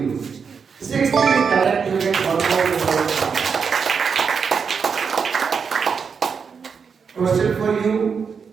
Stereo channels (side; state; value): left; quieter; 6.0 dB